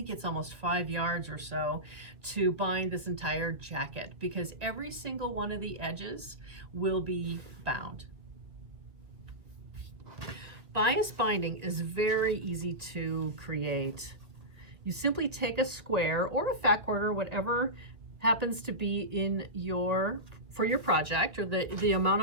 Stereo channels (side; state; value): left; late; 2.0 ms